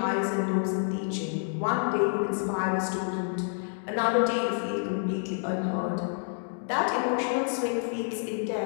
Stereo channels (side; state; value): right; silent; digital silence